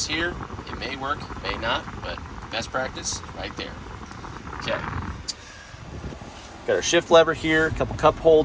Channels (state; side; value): identical; both; correlation 1.00